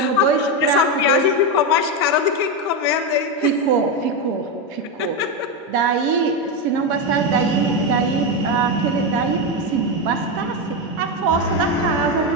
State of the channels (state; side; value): normal; both; correlation 0.10